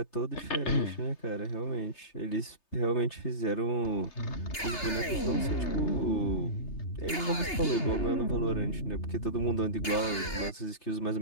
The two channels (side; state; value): right; late; 3.3 ms